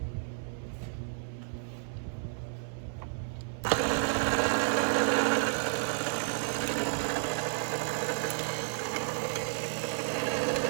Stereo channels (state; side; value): silent; left; 57 dB below the other